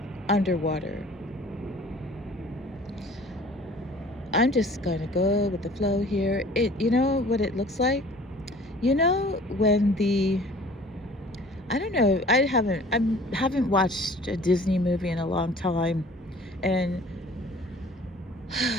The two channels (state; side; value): normal; both; correlation 0.49